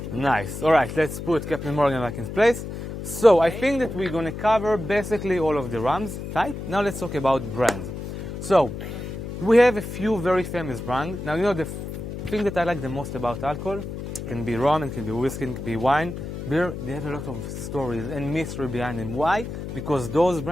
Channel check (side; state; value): left; noise; hum, 7 dB below the sound